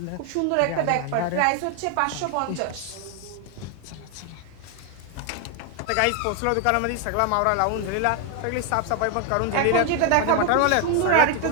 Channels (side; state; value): both; different; correlation 0.01